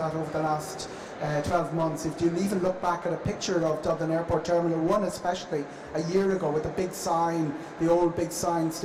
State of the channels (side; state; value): both; identical; correlation 1.00